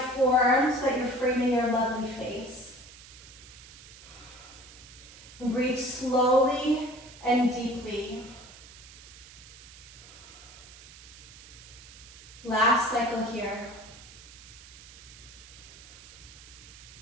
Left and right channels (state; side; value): noise; right; hiss, 18 dB below the sound